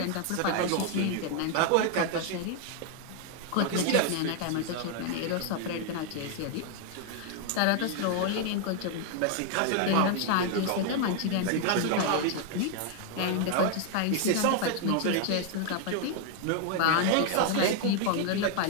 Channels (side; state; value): both; different; correlation 0.00